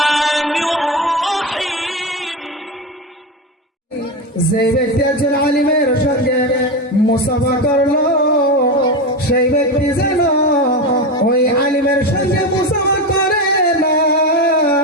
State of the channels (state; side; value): normal; both; correlation 0.17